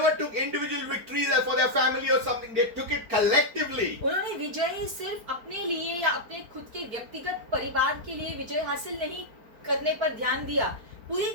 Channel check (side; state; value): left; late; 4.4 ms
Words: took individual victories for their family or something. They took it collectively. उन्होंने विजय सिर्फ अपने लिए या अपने खुद के व्यक्तिगत परिवार के लिए विजय हासिल नहीं करने पर ध्यान दिया। पूरी